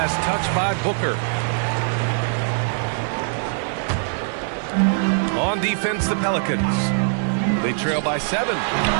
touched by Booker. On defense, the Pelicans. They trail by 7.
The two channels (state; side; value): silent; left; 64 dB below the other